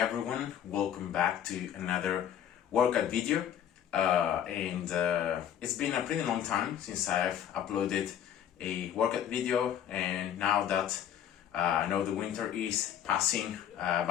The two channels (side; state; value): right; quieter; 9.9 dB